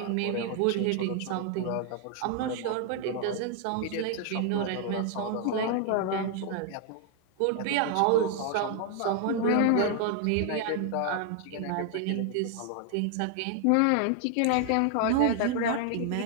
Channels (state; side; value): different; both; correlation 0.00